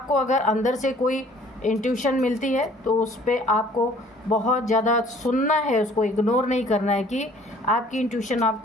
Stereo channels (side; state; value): both; normal; correlation 0.55